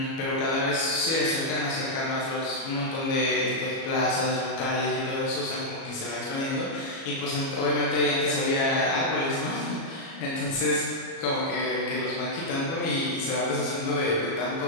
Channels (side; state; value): right; late; 37 ms